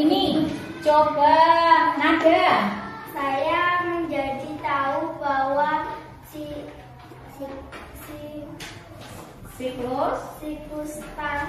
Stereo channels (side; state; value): both; identical; correlation 1.00